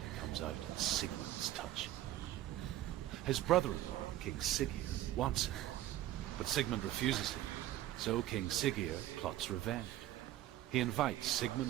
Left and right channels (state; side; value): quieter; left; 13.8 dB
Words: comes out at Sigmund's touch. His brother-in-law, King Siggeir, wants it, but Sigmund refuses it, so King Siggeir plots revenge. He invites